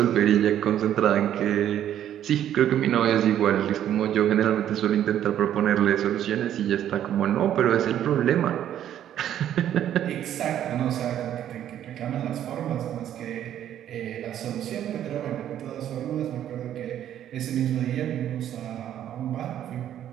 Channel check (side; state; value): left; quieter; 10.9 dB